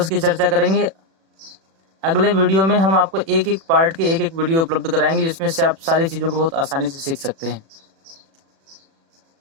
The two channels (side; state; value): left; late; 36 ms